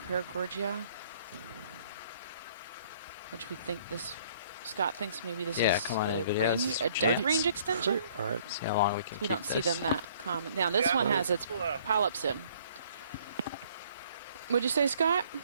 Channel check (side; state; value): both; inverted; correlation -0.59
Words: which we think this. Scott thinks maybe this Yeah, is come on in a, videos. a depth range extension. or See how long we can We don't keep see this. them that common. Now this Yeah, one well, has its well, polyps in. What'd you say, Scott?